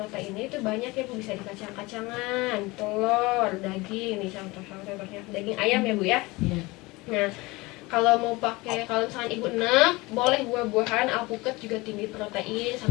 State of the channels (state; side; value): quieter; right; 22.7 dB